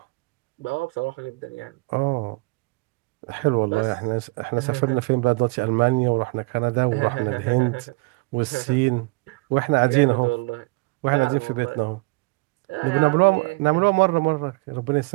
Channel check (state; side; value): quieter; left; 26.9 dB